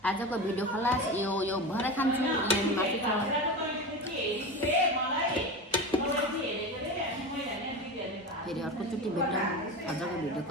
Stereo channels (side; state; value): both; normal; correlation 0.25